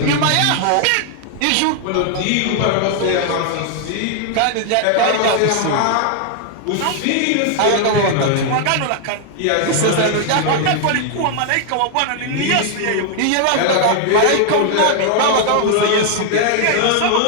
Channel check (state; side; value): different; both; correlation 0.00